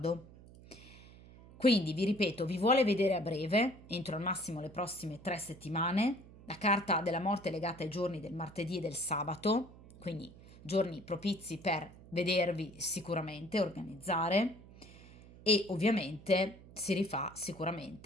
Quindi vi ripeto, vi vuole vedere a breve, entro al massimo le prossime 3 settimane. La carta della morte è legata ai giorni del martedì e del sabato, quindi giorni propizi per vedervi sicuramente, organizzare, e ovviamente si rifà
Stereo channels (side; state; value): right; noise; hum, 20 dB below the sound